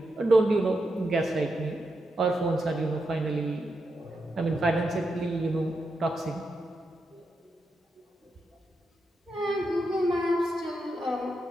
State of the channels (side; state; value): both; normal; correlation 0.85